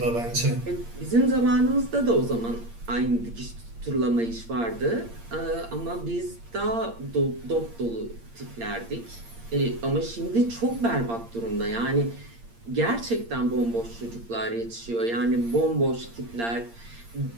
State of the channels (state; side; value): late; left; 8.7 ms